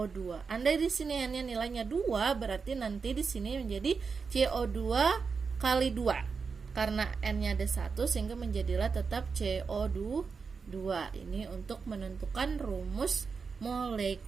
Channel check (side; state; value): left; quieter; 5.2 dB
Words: Andai di sini N-nya nilainya 2, berarti nanti di sini menjadi CO2 kali 2. Karena N-nya ada 1, sehingga menjadilah tetap CO2 2. Ini untuk menentukan rumus